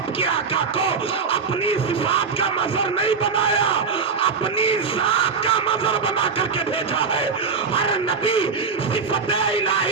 کے آقا کو اپنی صفات کا مظہر نہیں بنایا، اپنی ذات کا مظہر بنا کر کے بھیجا ہے. ہر نبی صفت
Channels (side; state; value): left; quieter; 5.4 dB